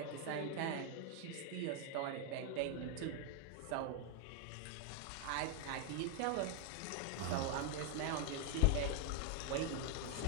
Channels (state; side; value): different; both; correlation 0.00